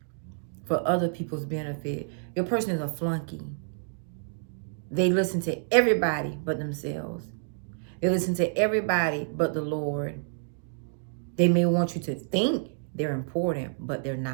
for other people's benefit. Your person is a flunky. They listen to everybody but themselves. They listen to everybody but the Lord. They may want you to think they're important, but they're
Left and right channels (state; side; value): silent; left; digital silence